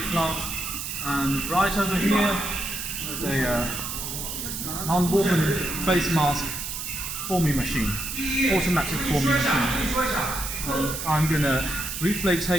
plant, and right over here is a non-woven face mask forming machine, automatic forming machine. And I'm going to briefly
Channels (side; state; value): right; noise; hiss, 5 dB below the sound